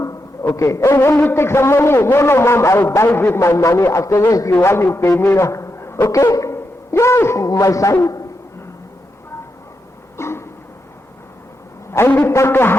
Okay. Hey, will you take some money? No, mom, I'll buy with my money. Afterwards, you want to pay me. Okay? Yes, my son. And we talk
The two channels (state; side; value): normal; both; correlation 0.85